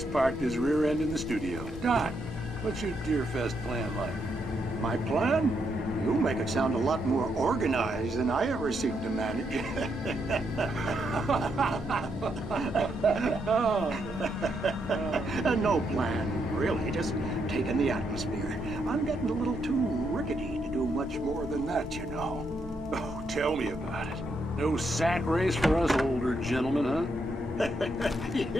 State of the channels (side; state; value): both; normal; correlation 0.78